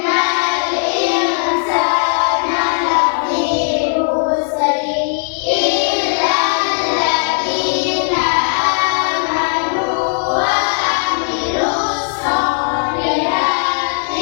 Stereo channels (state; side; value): silent; right; 67 dB below the other